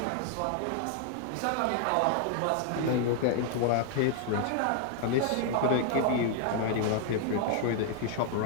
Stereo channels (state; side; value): different; both; correlation 0.00